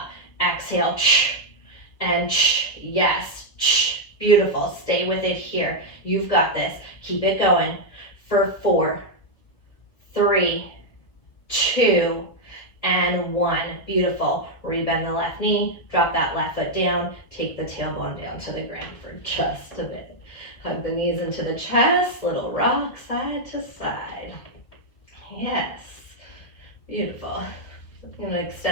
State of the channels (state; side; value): late; right; 1.6 ms